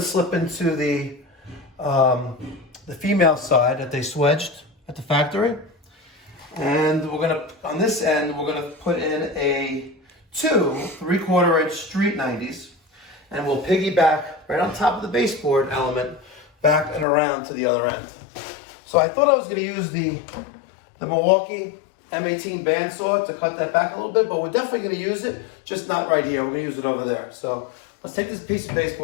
slip into the female side that they swedged at the factory. And we're going to, on this end, we're going to put in two 3/4 inch street 90s. And we'll piggyback right on top of the baseboard element back and around to the other end. So I thought I was going to use the Milwaukee M18 bandsaw to cut that back a little bit, but we're definitely going to use it, just not right here. We're going to use it over there. So let's take this piece of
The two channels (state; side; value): drops out; right; at 17.1 s